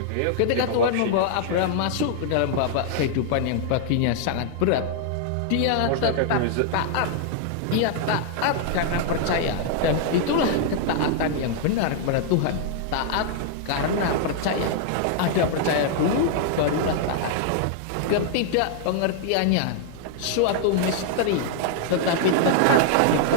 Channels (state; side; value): different; both; correlation -0.01